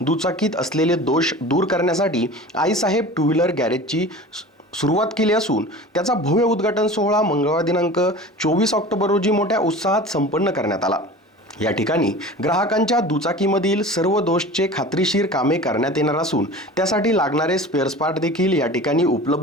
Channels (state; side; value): normal; both; correlation 0.38